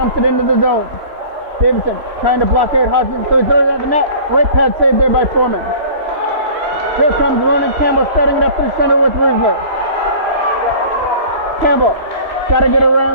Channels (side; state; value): left; late; 3.1 ms